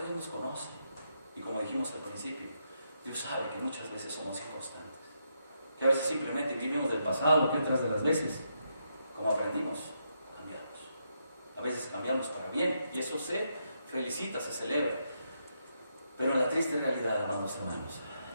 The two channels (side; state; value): both; inverted; correlation -0.80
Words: Dios nos conoce, y como dijimos al principio, Dios sabe que muchas veces somos inconstantes, que a veces simplemente vivimos del pasado, que otras de las veces, como aprendimos, cambiamos. A veces cambiamos para bien, y eso se felicita, se celebra. Pero en la triste realidad, amados hermanos,